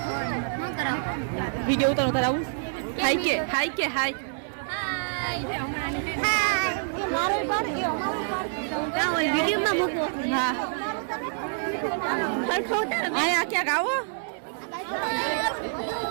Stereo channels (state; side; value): silent; left; 60 dB below the other